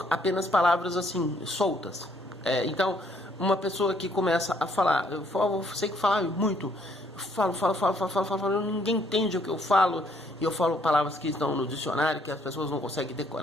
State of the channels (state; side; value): normal; both; correlation 0.67